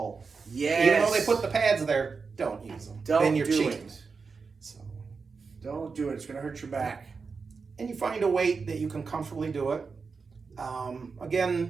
Yes. Even though they put the pads there, don't use them. Don't then you're do cheating. it. So, Don't do it. It's going to hurt your back. and you find a weight that you can comfortably do it.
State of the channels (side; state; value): left; quieter; 4.9 dB